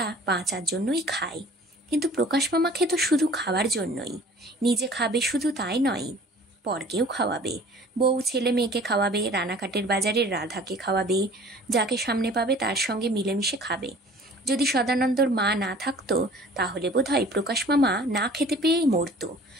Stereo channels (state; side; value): normal; both; correlation 0.48